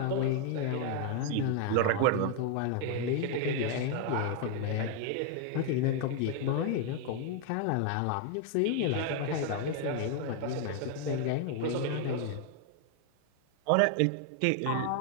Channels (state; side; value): different; both; correlation 0.00